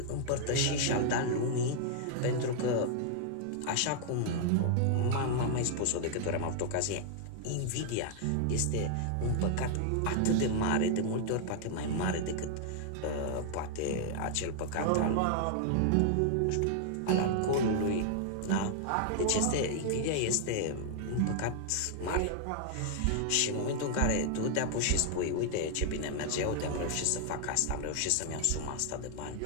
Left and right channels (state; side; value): different; both; correlation 0.00